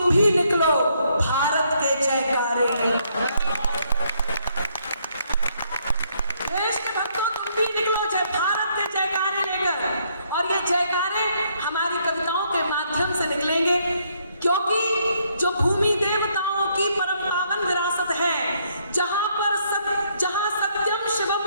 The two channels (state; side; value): inverted; both; correlation -0.71